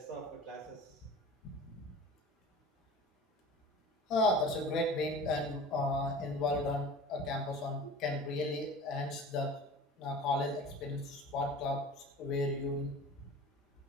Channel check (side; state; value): both; normal; correlation 0.39